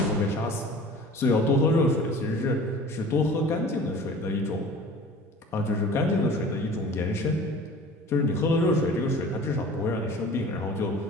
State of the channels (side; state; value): both; normal; correlation 0.43